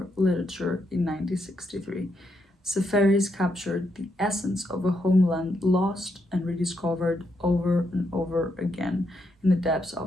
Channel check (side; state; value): both; normal; correlation 0.79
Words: Literature in 1963. Seferis captured the essence of a homeland lost and rediscovered over and over again in the depths